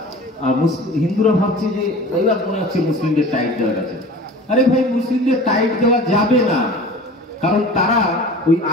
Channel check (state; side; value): normal; both; correlation 0.40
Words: আর হিন্দুরা ভাবছে যে এবার মনে হচ্ছে মুসলিমদের টাইট দেওয়া গেছে। আরে ভাই, মুসলিমদের টাইট দেওয়া যাবে না, কারণ তারা ওই